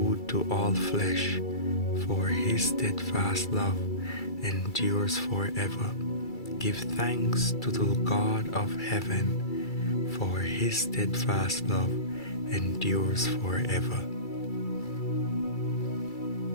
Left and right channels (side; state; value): right; late; 2.3 ms